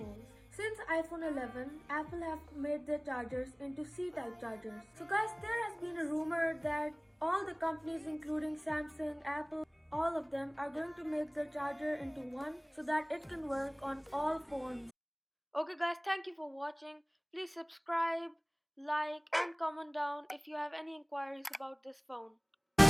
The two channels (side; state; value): both; identical; correlation 1.00